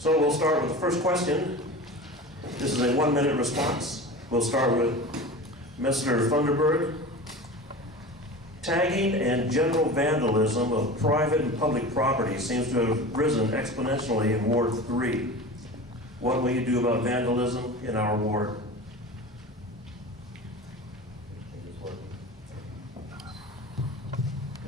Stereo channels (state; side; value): normal; both; correlation 0.33